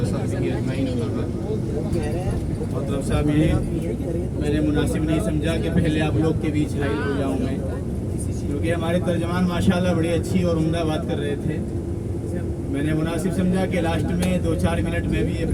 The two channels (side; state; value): both; identical; correlation 1.00